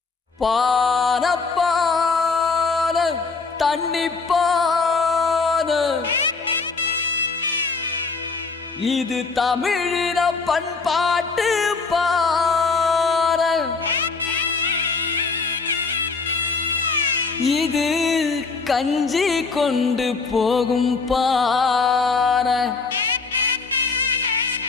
இது தமிழின பண்பாட்டு பார, இது கஞ்சி கொண்டு போகும் பார,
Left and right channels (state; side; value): quieter; right; 4.5 dB